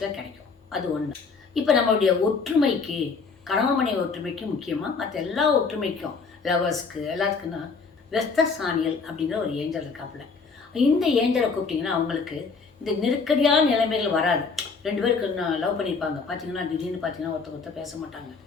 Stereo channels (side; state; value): right; quieter; 4.8 dB